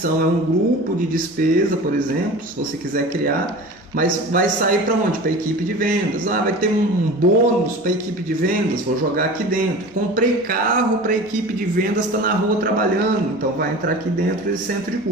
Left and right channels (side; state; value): both; normal; correlation 0.36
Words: é um grupo de despesa, por exemplo, se você quiser criar, mas vai sair para onde? Para a equipe de vendas. Vai ter um bônus para a equipe de vendas, vou jogar aqui dentro. Comprei carro para a equipe de vendas, está na rua trabalhando, então vai entrar aqui dentro desse centro de